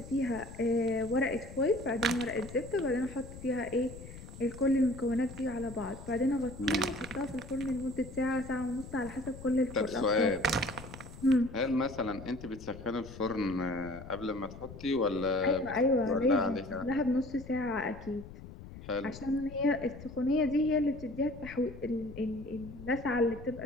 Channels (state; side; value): noise; left; rumble, 14 dB below the sound